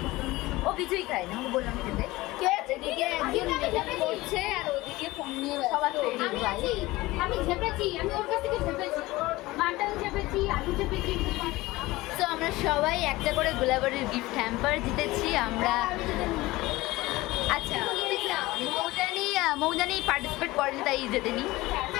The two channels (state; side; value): quieter; right; 19.4 dB